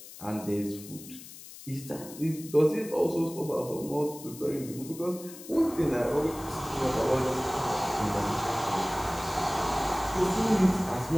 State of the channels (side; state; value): left; noise; hiss, 15 dB below the sound